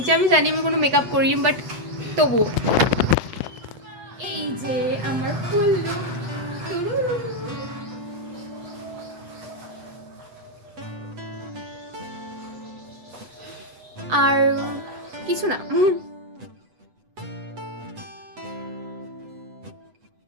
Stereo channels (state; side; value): late; left; 8.0 ms